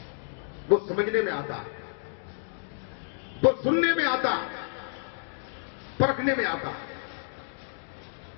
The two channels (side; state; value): right; silent; digital silence